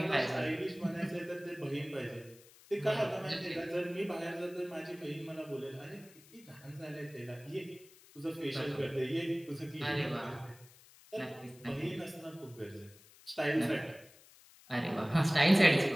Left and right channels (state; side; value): noise; left; hiss, 24 dB below the sound